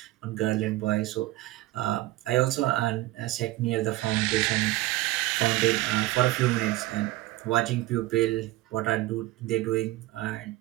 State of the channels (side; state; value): left; quieter; 17.7 dB